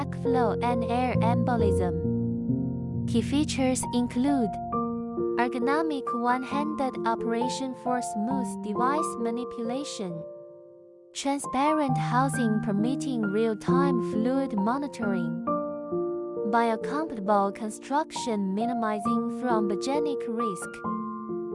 and air embolism. Key features include ergonomic one-handed operation for smooth device manipulation, transparent housing permitting real-time fluid monitoring, biocompatible construction minimizing thrombogenic risk,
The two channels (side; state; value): both; identical; correlation 1.00